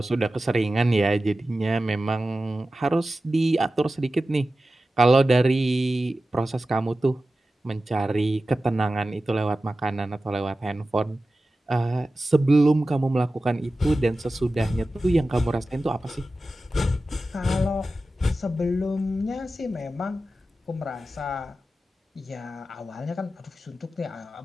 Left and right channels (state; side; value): normal; both; correlation 0.94